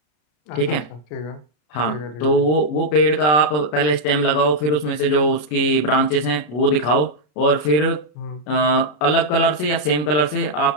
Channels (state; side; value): late; right; 33 ms